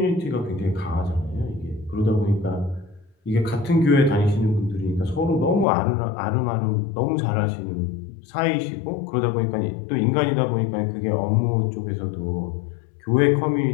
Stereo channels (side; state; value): right; drops out; at 5.7 s